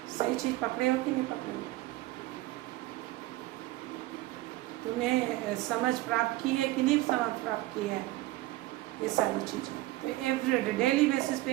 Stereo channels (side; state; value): left; quieter; 17.7 dB